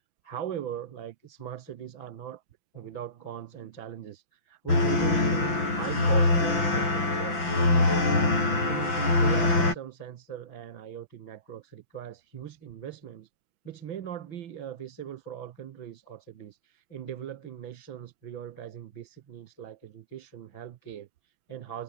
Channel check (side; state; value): right; late; 6.0 ms